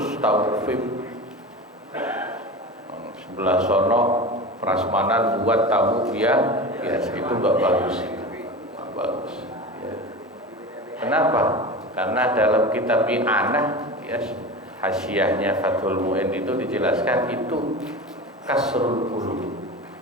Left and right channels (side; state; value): both; normal; correlation 0.29